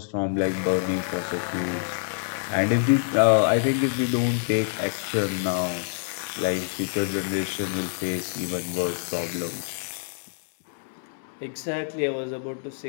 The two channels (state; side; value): silent; right; digital silence